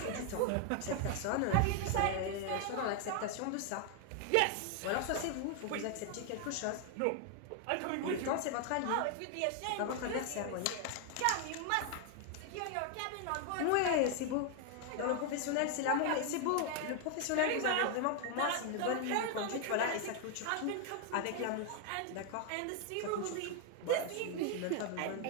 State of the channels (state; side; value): different; both; correlation 0.00